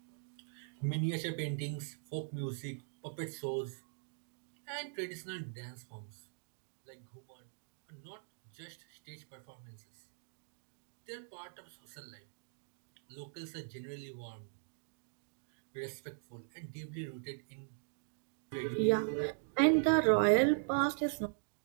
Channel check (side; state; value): left; silent; digital silence